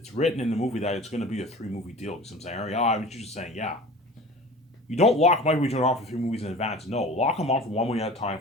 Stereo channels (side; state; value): both; normal; correlation 0.39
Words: written in the movie that it's going to be a 3-movie deal. You know what I'm saying? Yeah, I was just saying, yeah. You don't lock Michael B. Jordan on for 3 movies in advance. No, lock him on for one movie at a time